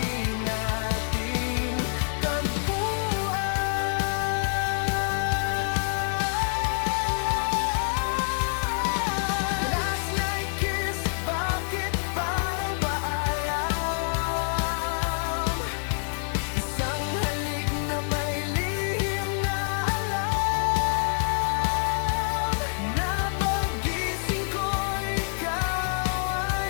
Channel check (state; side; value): silent; right; 60 dB below the other